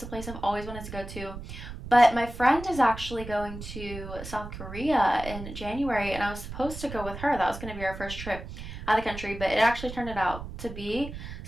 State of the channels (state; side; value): noise; right; rumble, 10 dB below the sound